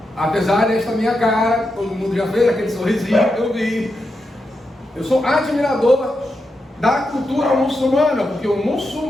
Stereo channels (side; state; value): both; normal; correlation 0.86